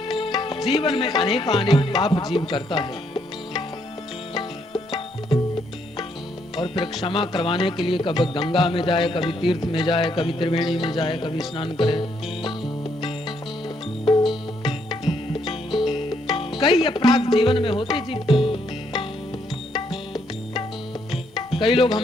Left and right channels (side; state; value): both; normal; correlation 0.73